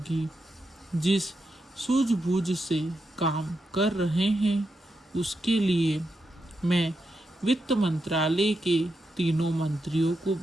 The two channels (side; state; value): both; normal; correlation 0.85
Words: जिस सूझबूझ से काम कर रहे हैं उसके लिए मैं वित्त मंत्रालय के तीनों मंत्रियों को